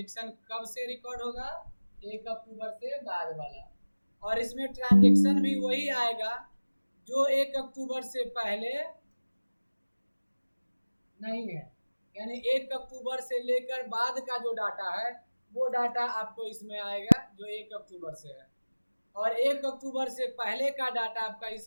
कब से रिकॉर्ड होगा? 1 अक्टूबर से बाद वाला। और इसमें ट्रांजेक्शन भी वही आएगा जो 1 अक्टूबर से पहले नहीं है, यानी 1 अक्टूबर से लेकर बाद का जो डाटा है वो डाटा आपको इसमें आएगा जो 1 अक्टूबर से है, और 1 अक्टूबर से पहले का डाटा आपका इस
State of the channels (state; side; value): inverted; both; correlation -1.00